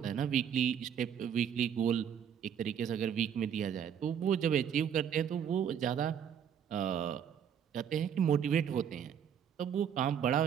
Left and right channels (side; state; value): left; quieter; 8.4 dB